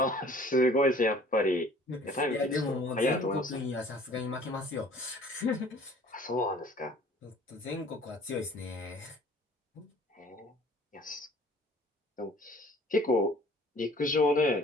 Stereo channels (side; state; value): both; normal; correlation 0.52